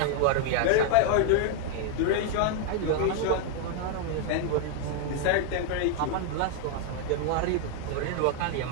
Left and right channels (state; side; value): different; both; correlation 0.00